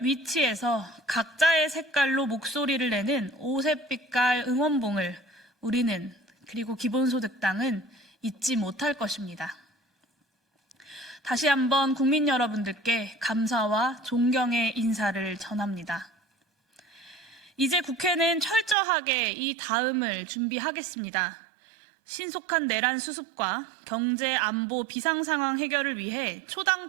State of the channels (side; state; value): left; drops out; at 18.8 s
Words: 위치에서 각자의 색깔로 목소리를 내는 오색빛깔 응원봉을 우리는 그리고 기본소득당은 잊지 못할 것입니다. 다시 한번 국민 여러분들께 감사와 존경의 인사를 전합니다. 이제 국회는 철저하게 이 다음을 준비하겠습니다. 신속한 내란 수습과 경제, 안보, 비상상황 해결을 위해